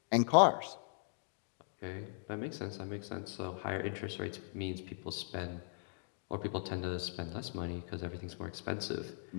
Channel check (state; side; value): silent; right; digital silence